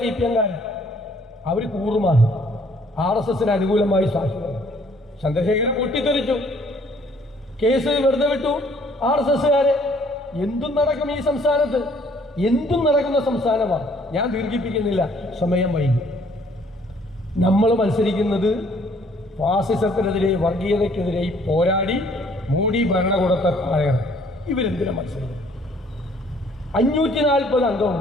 CPMകാരൻ. അവർ കൂറുമാറി RSSന് അനുകൂലമായി സാക്ഷി വന്നു. ചന്ദ്രശേഖരൻ പൊട്ടിത്തെറിച്ചു. കേസ് വെറുതെ വിട്ടു. RSSകാരെ എന്തും നടക്കും ഈ സംസ്ഥാനത്ത്, എന്തും നടക്കുന്ന സംസ്ഥാനമാണ്. ഞാൻ ദീർഘിപ്പിക്കുന്നില്ല, സമയം വൈകി. നമ്മൾ മത്സരിക്കുന്നത് ഫാസിസത്തിനെതിരെ, വർഗീയതയ്ക്കെതിരെ പോരാടി മോഡി ഭരണകൂടത്തെ താഴെ. ഇവരെന്തിനാ മത്സരിക്കുന്നത്? 540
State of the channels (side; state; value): both; normal; correlation 0.61